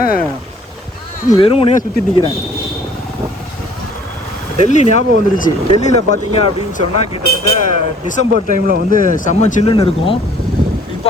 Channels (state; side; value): normal; both; correlation 0.56